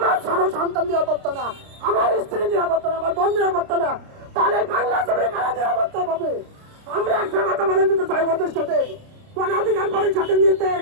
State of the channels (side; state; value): left; late; 29 ms